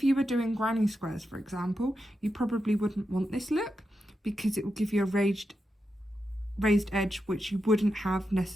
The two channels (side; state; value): both; normal; correlation 0.88